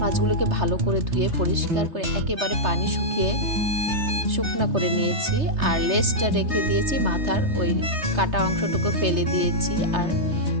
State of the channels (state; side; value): late; left; 3.3 ms